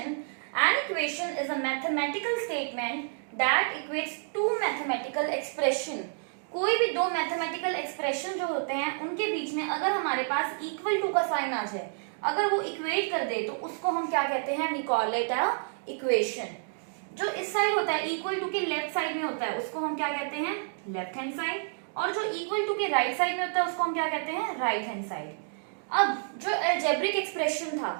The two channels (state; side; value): silent; left; digital silence